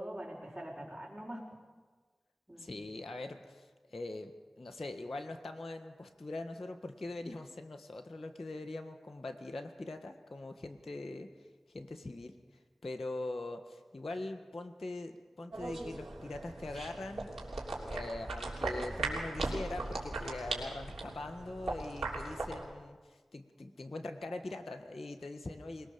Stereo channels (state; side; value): normal; both; correlation 0.88